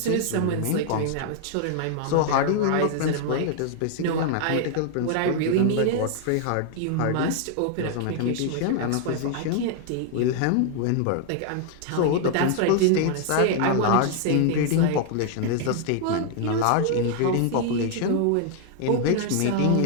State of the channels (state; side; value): different; both; correlation 0.00